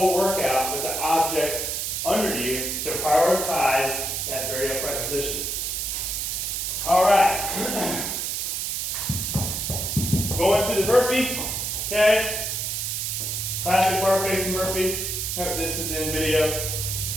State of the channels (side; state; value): right; noise; hiss, 2 dB below the sound